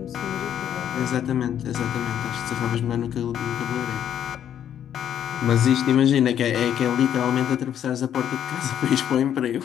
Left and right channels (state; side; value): quieter; right; 9.8 dB